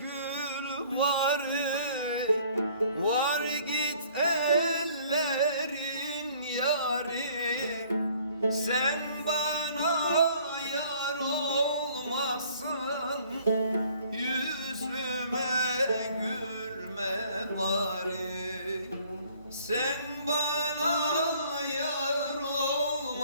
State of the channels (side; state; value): both; inverted; correlation -0.57